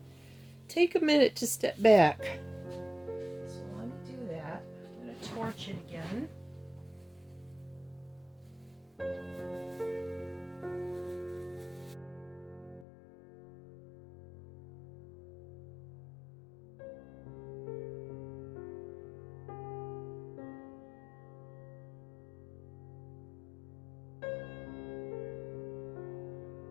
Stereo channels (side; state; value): right; drops out; at 12.9 s